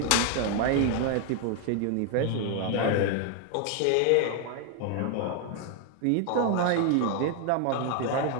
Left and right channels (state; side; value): different; both; correlation 0.01